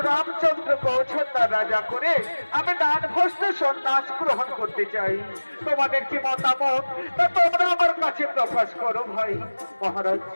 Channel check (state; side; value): inverted; both; correlation -1.00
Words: রামচন্দ্রকে অযোধ্যার রাজা করে আমি দানভস্ত সন্ন্যাস গ্রহণ করতে চাই। তোমাদের কি মতামত তা তোমরা আমার কাছে প্রকাশ করো ভাই। মহারাজ